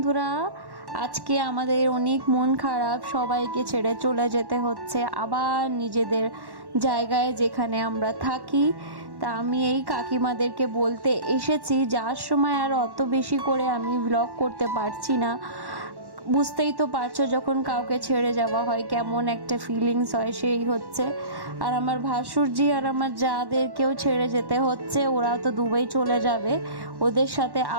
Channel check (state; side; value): late; left; 1.1 ms